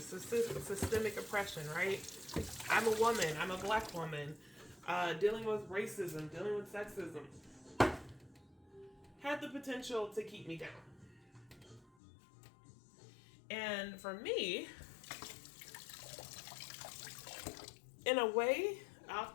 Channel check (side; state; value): right; drops out; at 11.9 s